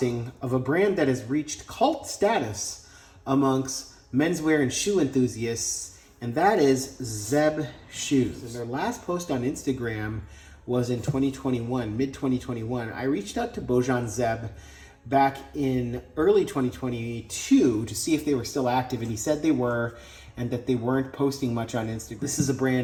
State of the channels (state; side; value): identical; both; correlation 1.00